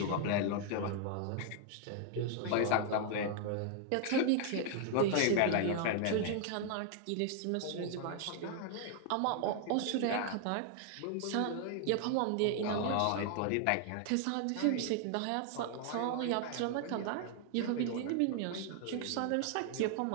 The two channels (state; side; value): different; both; correlation 0.00